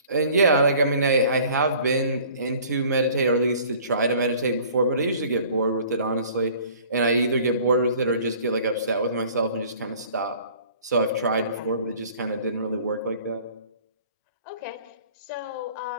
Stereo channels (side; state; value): both; inverted; correlation -0.51